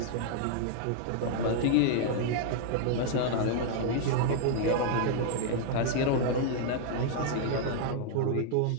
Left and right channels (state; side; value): different; both; correlation -0.01